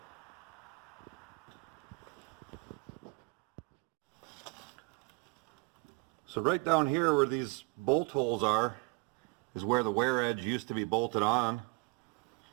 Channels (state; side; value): quieter; left; 27.7 dB